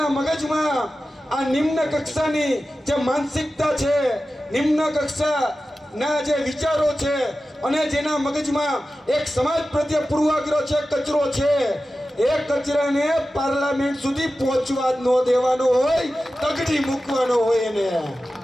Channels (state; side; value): normal; both; correlation 0.94